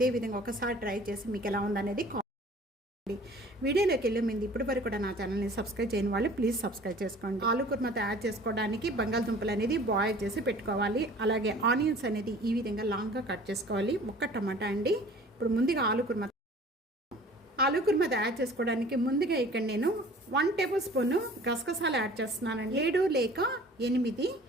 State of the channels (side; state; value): both; normal; correlation 0.48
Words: విధంగా ఒకసారి ట్రై చేసి మీకు ఎలా ఉందనేది కామెంట్. వీడియోలోకి వెళ్ళే ముందు ఇప్పటి వరకు కూడా నా ఛానల్ని సబ్స్క్రైబ్ చేయని వాళ్ళు ప్లీజ్ సబ్స్క్రైబ్ చేసుకోండి. ఆలు కుర్మా తయారు చేసుకోవడానికి బంగాళదుంపలు అనేది బాయిల్ చేసి పెట్టుకోవాలి. అలాగే ఆనియన్స్ అనేది ఈ విధంగా లాంగ్గా కట్ చేసుకోవాలి. ఒక్క టమాటా అండి. ఇప్పుడు ముందుగా ఆలు కుర్మా తయారు చేసుకోవడానికి ముందుగా ఇక్కడ నేను 1 టేబుల్ స్పూన్ గసగసాలు యాడ్ చేస్తున్నానండి. 7 లేక 8